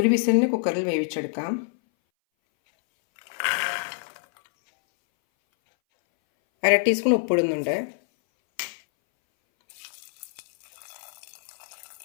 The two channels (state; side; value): silent; right; 59 dB below the other